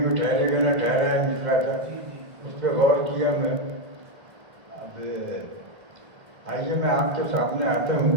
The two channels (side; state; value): left; late; 1.6 ms